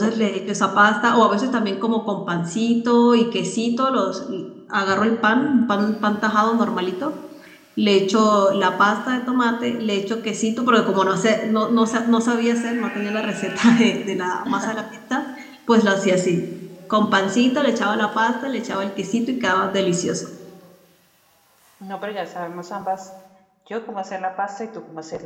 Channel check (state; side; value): identical; both; correlation 1.00